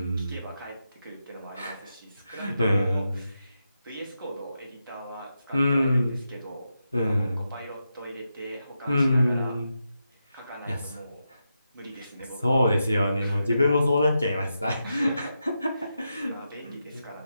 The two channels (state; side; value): inverted; both; correlation -0.87